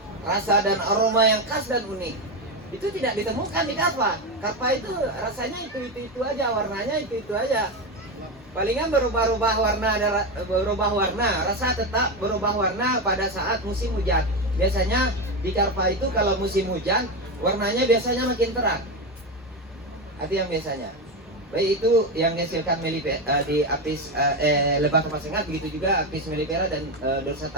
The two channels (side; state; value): both; normal; correlation 0.14